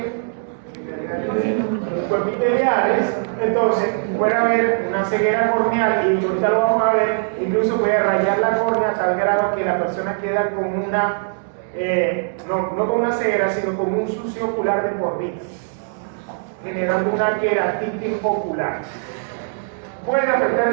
Cuerpiteliales. Entonces puede haber una ceguera corneal y ahorita lo vamos a ver, incluso puede rayar la córnea a tal grado que la persona queda con una no con una ceguera, sino con un sucio ocular de por vida, generando una queratitis ocular. Puede afectar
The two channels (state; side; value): silent; left; digital silence